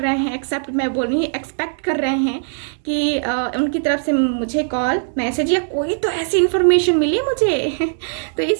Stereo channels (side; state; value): left; silent; digital silence